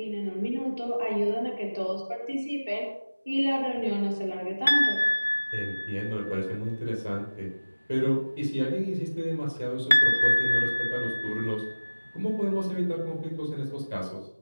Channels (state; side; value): inverted; both; correlation -1.00